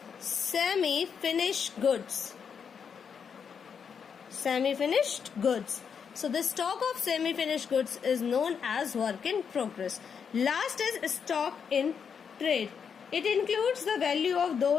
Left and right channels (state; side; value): quieter; right; 6.8 dB